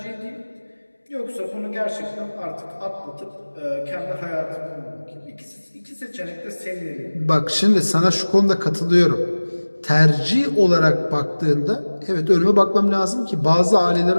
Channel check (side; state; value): both; inverted; correlation -1.00